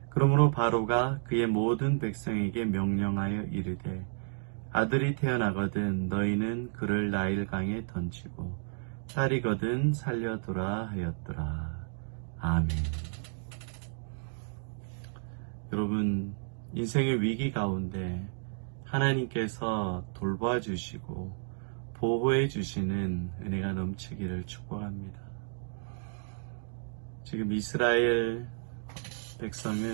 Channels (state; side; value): silent; left; digital silence